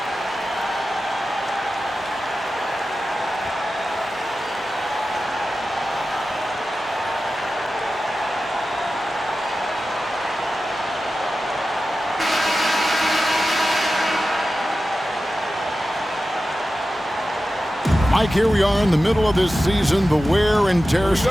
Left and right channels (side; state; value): both; normal; correlation 0.93